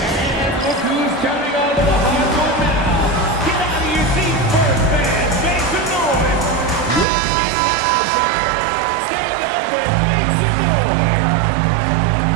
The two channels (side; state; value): left; drops out; at 7.1 s